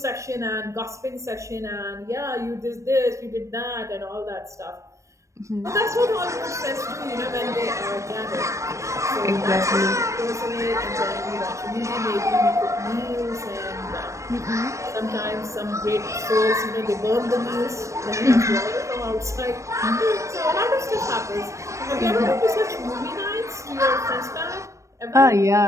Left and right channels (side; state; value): left; late; 0.15 ms